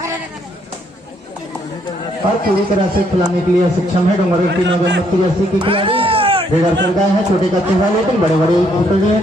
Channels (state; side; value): normal; both; correlation 0.70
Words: और पूरी तरह से खिलाने के लिए सक्षम है डोंगरगढ़ की 9 नंबर की जर्सी की खिलाड़ी रेडर कर गए हैं। छोटे कच्चे हैं लेकिन बड़े बड़े खिलाड़ी